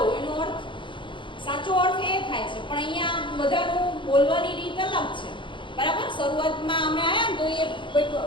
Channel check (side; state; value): right; late; 0.24 ms